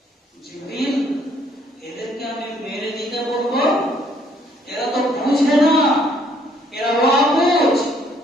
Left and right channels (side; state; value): both; normal; correlation 0.65